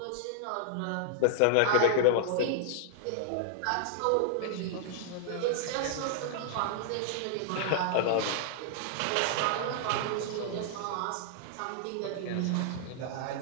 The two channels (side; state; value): both; different; correlation -0.01